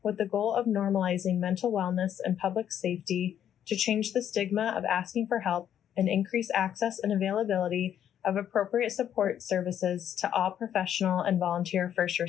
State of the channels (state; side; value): quieter; right; 9.9 dB